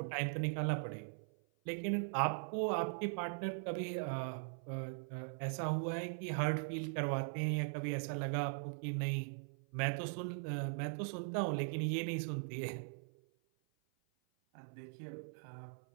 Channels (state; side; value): silent; left; 51 dB below the other